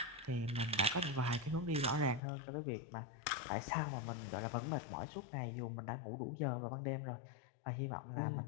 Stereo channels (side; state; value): right; drops out; at 2.2 s